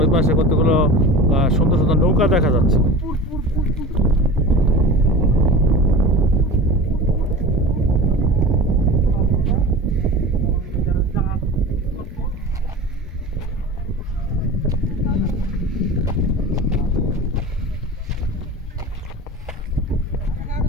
পাশে কতগুলো সুন্দর সুন্দর নৌকা দেখা যাচ্ছে।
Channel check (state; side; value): normal; both; correlation 0.34